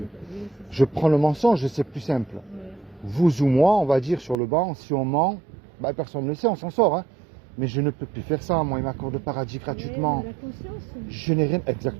Oui, c'est Je prends le mensonge, c'est plus simple. ça. Ouais. Vous ou moi, on va dire sur le banc, si on ment, bah, personne ne le sait, on s'en sort. Hein. Mais je ne peux plus faire ça, moi, il m'accorde le paradis gratuitement. Ouais, la conscience. Je n'ai rien,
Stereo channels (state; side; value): drops out; left; at 4.4 s